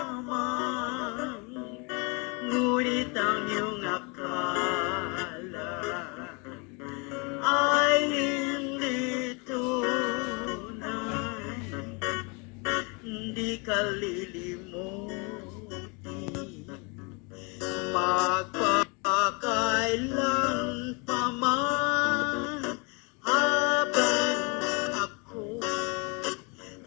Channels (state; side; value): quieter; right; 31.5 dB